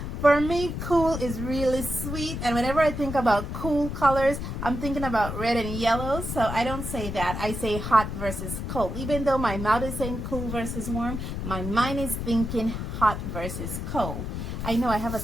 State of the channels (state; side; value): noise; left; rumble, 5 dB below the sound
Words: for me, cool is really sweet. And whenever I think about cool colors, I'm thinking about red and yellow. So I don't say that. I say hot versus cold. Even though my mouth is saying cool versus warm, my mind is thinking hot versus cold. I know I have a